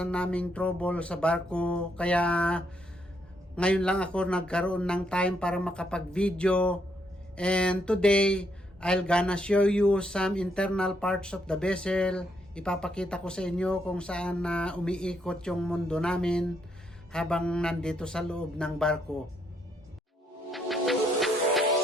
naming trouble sa barko. Kaya ngayon lang ako nagkaroon ng time para makapag-video. And today, I'll gonna show you some internal parts of the vessel. Ipapakita ko sa inyo kung saan umiikot yung mundo namin habang nandito sa loob ng barko.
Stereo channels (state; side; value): normal; both; correlation 0.75